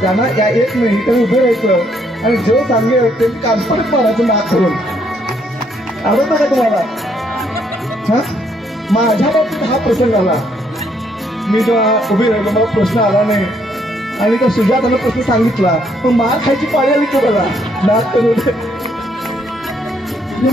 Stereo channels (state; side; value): normal; both; correlation 0.71